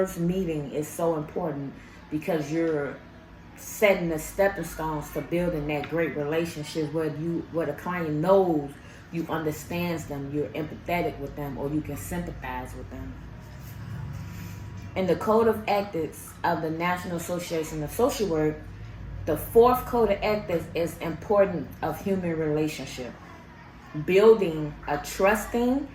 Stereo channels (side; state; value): both; identical; correlation 1.00